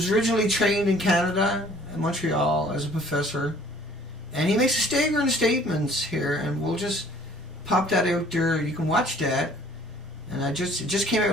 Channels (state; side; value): normal; both; correlation 0.55